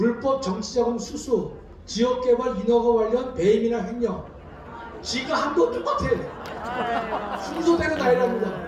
정치자금 수수, 지역개발 인허가 관련 배임이나 횡령. 지가 한 거 똑같아요. 순서대로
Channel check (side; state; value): both; identical; correlation 1.00